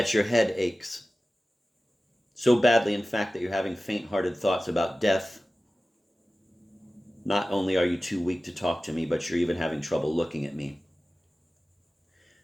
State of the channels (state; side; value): normal; both; correlation 0.96